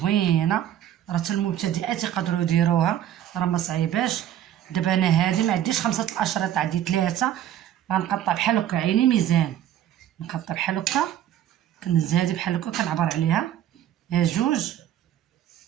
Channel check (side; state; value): left; quieter; 11.2 dB